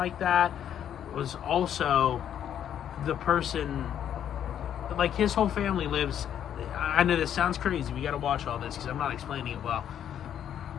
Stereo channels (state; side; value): quieter; right; 9.7 dB